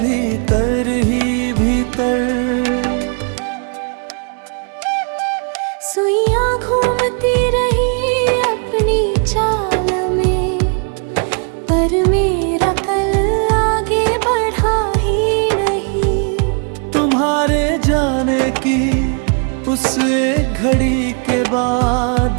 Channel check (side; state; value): left; quieter; 39.8 dB